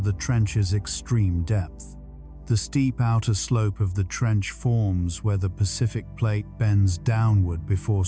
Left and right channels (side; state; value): both; identical; correlation 1.00